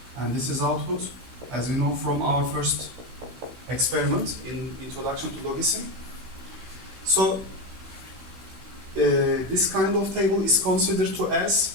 and this is output, as we know from our first experiment in Introduction to Logism. So this kind of table is considered to as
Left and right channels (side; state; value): left; late; 16 ms